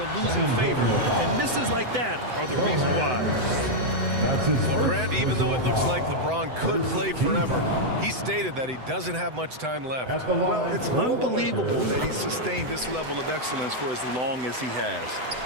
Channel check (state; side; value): late; left; 7.9 ms